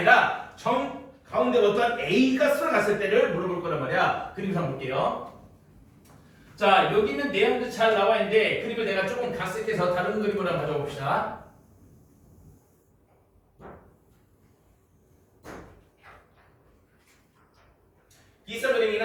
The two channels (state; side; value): identical; both; correlation 1.00